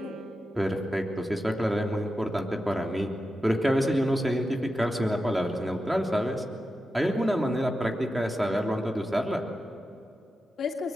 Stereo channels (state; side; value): normal; both; correlation 0.90